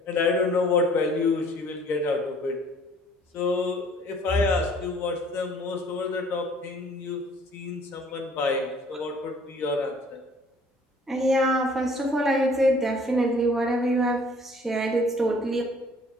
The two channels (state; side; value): normal; both; correlation 0.55